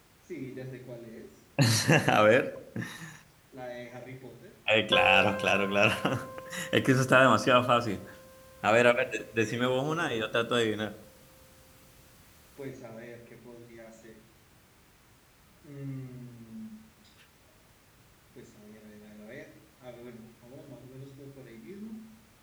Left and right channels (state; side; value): identical; both; correlation 1.00